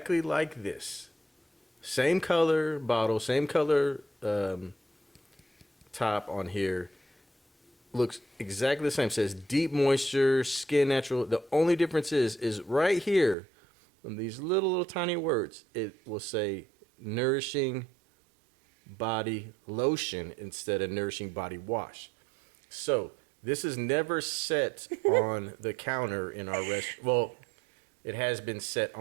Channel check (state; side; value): drops out; left; at 13.4 s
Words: like this. Same color bottle, same color top on here. Looks exactly the same. Says deep moisture, skin natural. The only difference is right here, on these little tiny words, it will say nourishing body lotion instead of nourishing body wash. So this is never set on the counter in our restroom. Well, it has been set